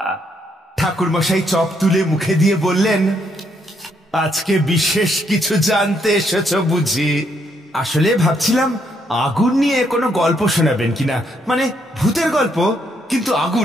ঠাকুরমশাই চপ তুলে মুখে দিয়ে বললেন, আজকে বিশেষ কিছু জানতে এসেছো বুঝি? আসলে ভাবছিলাম আগুন নিয়ে কোনো গল্প শোনাবেন কিনা, মানে ভূতের গল্প, কিন্তু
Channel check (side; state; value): both; normal; correlation 0.74